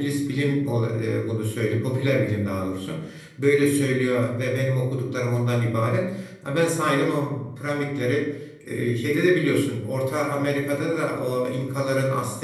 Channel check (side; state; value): both; identical; correlation 1.00